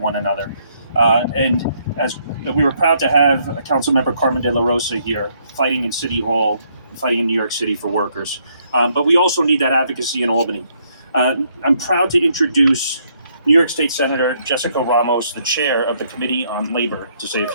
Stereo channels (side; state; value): both; inverted; correlation -0.71